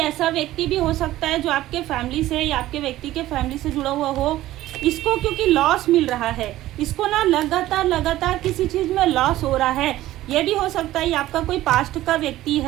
व्यक्ति भी हो सकता है जो आपके फैमिली से या आपके व्यक्ति के फैमिली से जुड़ा हुआ हो। इसको क्योंकि लॉस मिल रहा है, इसको ना लगातार किसी चीज़ में लॉस हो रहा है। ये भी हो सकता है ये आपका कोई पास्ट का व्यक्ति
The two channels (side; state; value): left; quieter; 15.2 dB